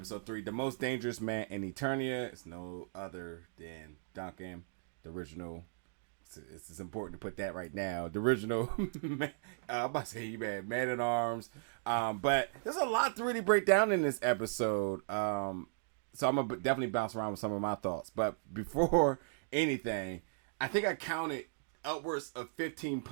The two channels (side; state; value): left; silent; digital silence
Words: 3, the most dangerous man in Eternia is no other than Duncan, the original. It's important to put that right now. The original, I'm about to say you man at arms. But there's a lot to really break down in this episode. So I'm going to definitely bounce around with some of my thoughts. But before anything, I think I counted upwards of 15